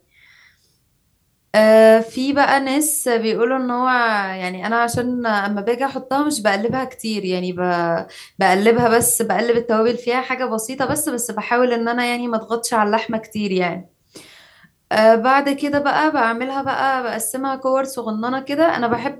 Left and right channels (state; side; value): identical; both; correlation 1.00